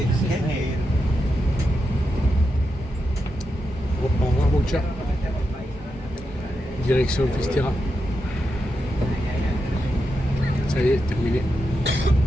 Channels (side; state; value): both; normal; correlation 0.86